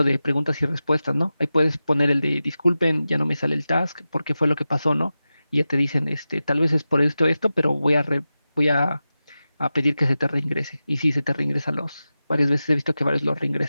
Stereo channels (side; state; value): both; inverted; correlation -0.94